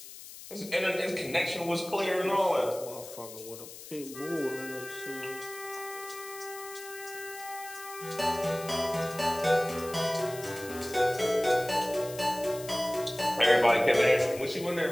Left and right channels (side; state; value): left; noise; hiss, 14 dB below the sound